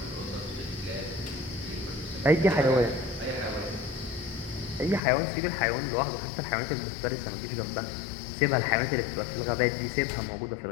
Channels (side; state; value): right; drops out; at 5.0 s